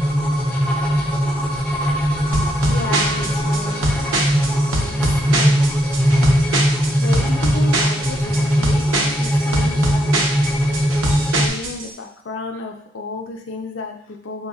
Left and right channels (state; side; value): normal; both; correlation 0.78